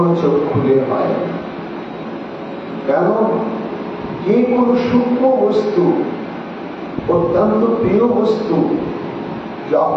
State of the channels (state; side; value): identical; both; correlation 1.00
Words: চোখ খুলে হয়। কেন? যে কোনো সূক্ষ্ম বস্তু, অত্যন্ত প্রিয় বস্তু